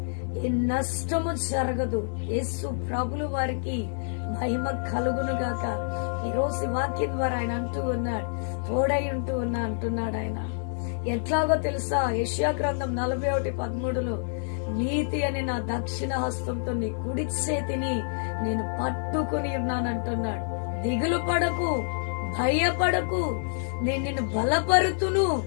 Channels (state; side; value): silent; right; digital silence